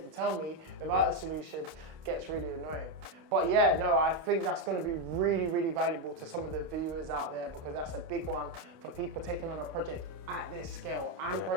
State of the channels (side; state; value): left; late; 29 ms